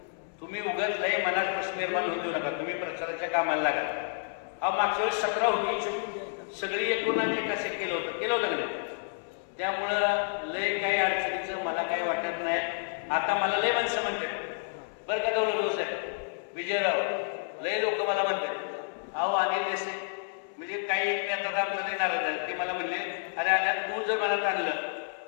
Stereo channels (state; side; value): silent; right; 58 dB below the other